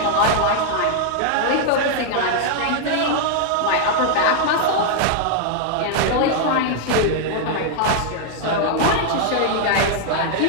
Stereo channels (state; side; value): different; both; correlation 0.00